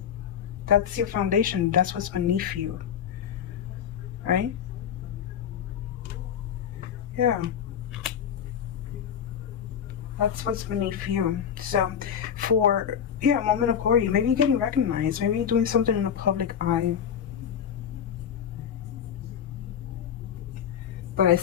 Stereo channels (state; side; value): quieter; right; 8.5 dB